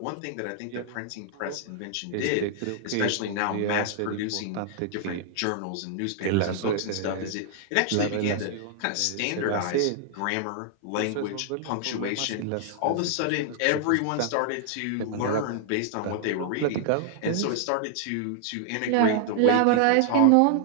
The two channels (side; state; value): both; different; correlation -0.01